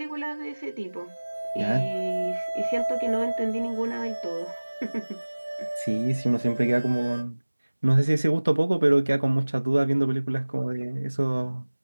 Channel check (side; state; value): both; inverted; correlation -1.00